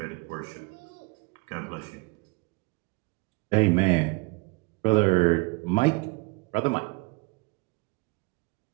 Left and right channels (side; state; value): left; quieter; 27.3 dB